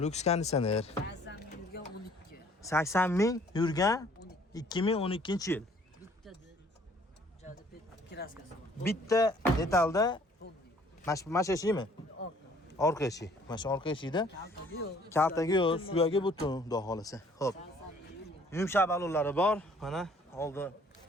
konditsioner. 80 ming yurgan 80 12. ming yurgan 2012-yil. Bitta joyda kraskasi bor. Bitta detalda Fond. mana shu eshikmi? Orqa. Orqa eshik. Mana shu orqa eshikda Kaltagi yo'q. kaltagi yo'q, suyagi butun, xudo xolasa. Xo'p. 80 ming yurgan. Yumshoq balonlari bor. Mana oldi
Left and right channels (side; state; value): both; normal; correlation 0.58